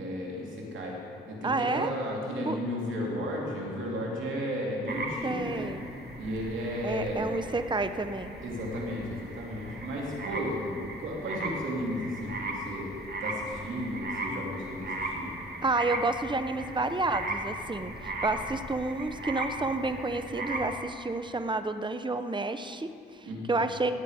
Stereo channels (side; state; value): both; normal; correlation 0.49